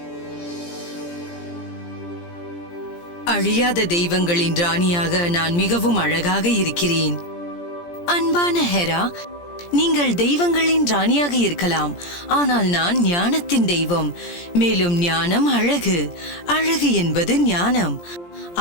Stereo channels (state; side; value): late; right; 17 ms